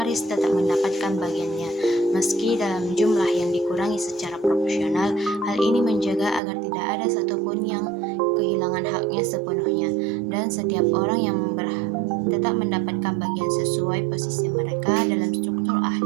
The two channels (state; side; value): drops out; left; at 6.4 s